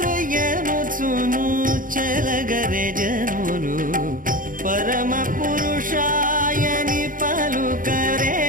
చెలగరే జనులు పరమ పురుషాయని పలుకరే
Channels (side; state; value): left; late; 0.40 ms